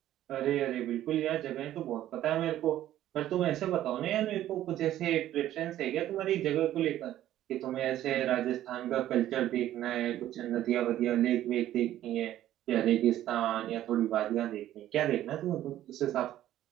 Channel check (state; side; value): quieter; left; 12.9 dB